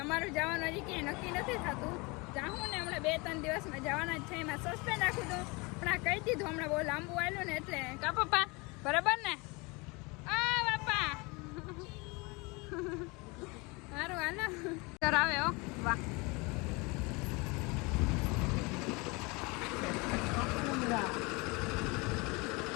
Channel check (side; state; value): right; quieter; 27.1 dB